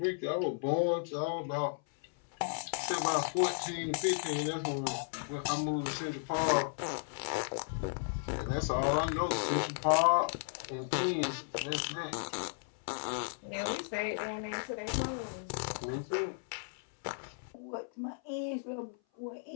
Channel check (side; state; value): right; silent; 55 dB below the other